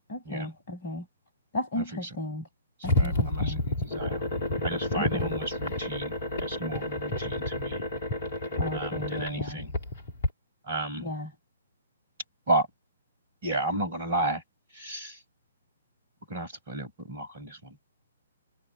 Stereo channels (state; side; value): inverted; both; correlation -0.36